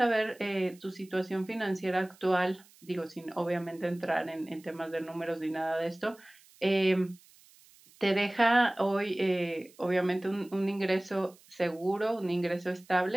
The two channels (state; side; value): noise; right; hiss, 27 dB below the sound